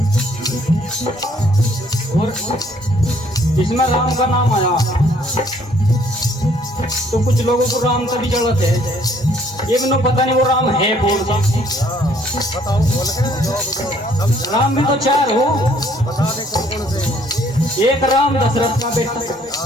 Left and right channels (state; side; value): normal; both; correlation 0.63